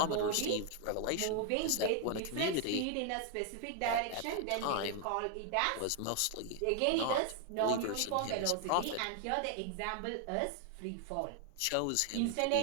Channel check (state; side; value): different; both; correlation 0.00